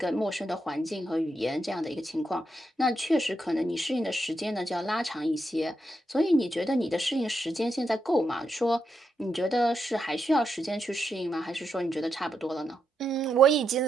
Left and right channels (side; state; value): both; normal; correlation 0.83